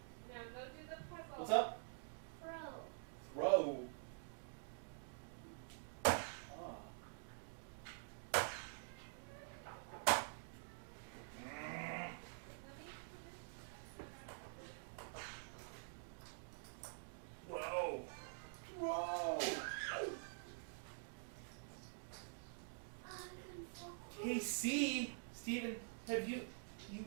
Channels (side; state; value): left; silent; digital silence